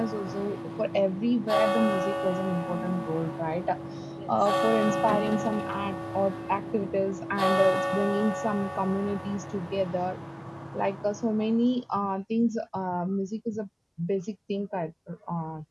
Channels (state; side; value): identical; both; correlation 1.00